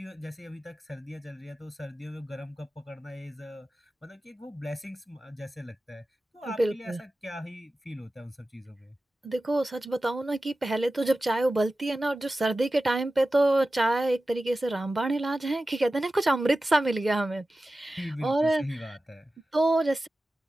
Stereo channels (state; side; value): normal; both; correlation 0.95